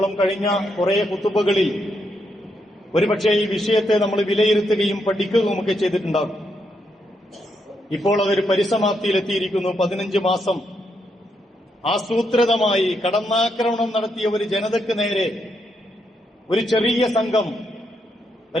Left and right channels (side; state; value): both; normal; correlation 0.79